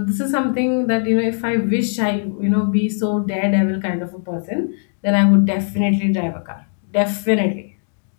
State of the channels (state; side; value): silent; right; digital silence